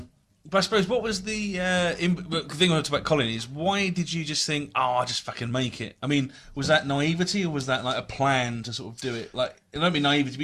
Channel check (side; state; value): both; identical; correlation 1.00